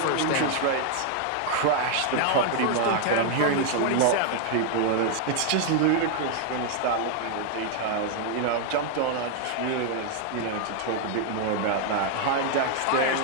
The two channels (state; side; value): different; both; correlation 0.00